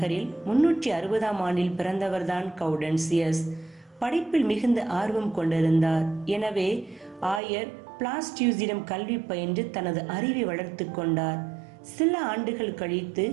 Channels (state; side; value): drops out; left; at 7.4 s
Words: 360ஆம் ஆண்டில் பிறந்தவர்தான் கவுடன்சியஸ். படிப்பில் மிகுந்த ஆர்வம் கொண்டிருந்தார். எனவே ஆயர் பிளாஸ்டியூஸிடம் கல்வி பயின்று தனது அறிவை வளர்த்து கொண்டார். சில ஆண்டுகள் கழித்து